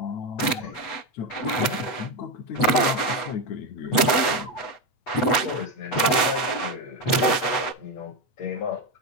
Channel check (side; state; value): right; late; 8.1 ms